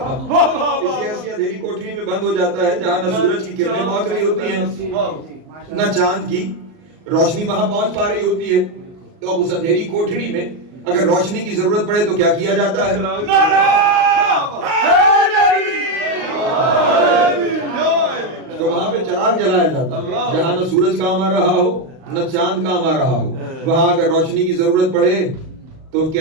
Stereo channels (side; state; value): left; late; 39 ms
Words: کسی ایسی اندھیری کوٹری میں بند ہو جاتا ہے جہاں نہ سورج کی کرنیں پہنچ رہی ہوتی ہیں نہ چاند کی روشنی وہاں پہنچ پا رہی ہوتی ہے. تو اب اس اندھیری کوٹری میں اگر روشنی کی ضرورت پڑے تو کیا کیا جاتا ہے؟ تو وہاں پہ چراغ جلایا جاتا ہے جہاں نہ سورج کام آ رہا ہو نہ چاند کام آ رہا ہو. وہاں اگر روشنی کی ضرورت پڑے تو